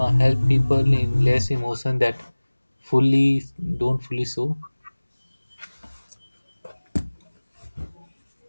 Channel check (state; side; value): inverted; both; correlation -1.00